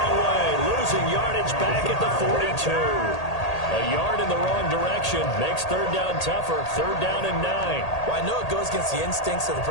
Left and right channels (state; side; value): late; right; 1.8 ms